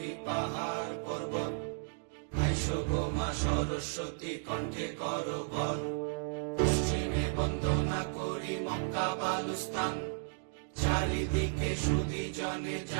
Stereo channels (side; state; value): left; silent; digital silence